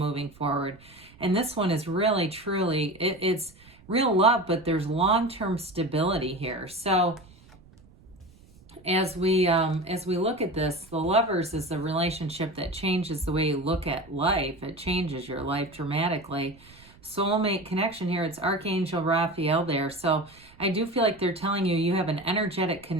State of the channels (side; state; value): right; noise; rumble, 25 dB below the sound